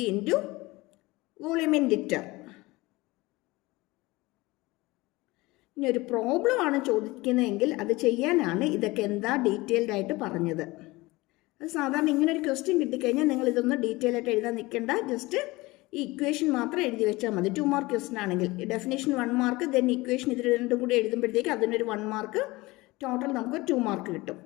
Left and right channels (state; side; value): quieter; right; 21.4 dB